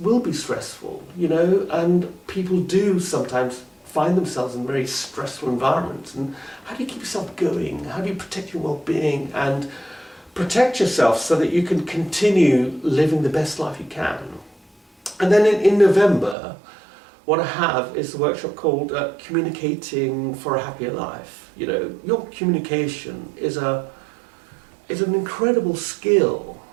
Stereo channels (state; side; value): drops out; left; at 16.4 s